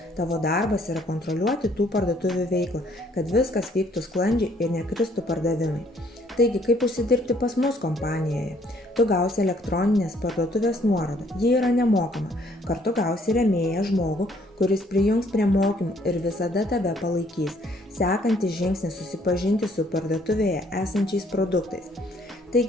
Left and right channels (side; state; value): both; normal; correlation 0.64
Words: Tavo darbas yra kontroliuoti tų parduotuvių veiklą, kad viskas vyktų sklandžiai ir nekristų pardavimai. Taigi, kaip užsidirbti pas mus kompanijoje? Tu gausi elektroninės parduotuvės nuorodą, ji yra nemokama. Kartu gausi rėmėją žmogų, kuris prijungs prie mokymų ir visada tave palaikys. Sekantis žingsnis susipažinti su parduotuvėje esančiais produktais.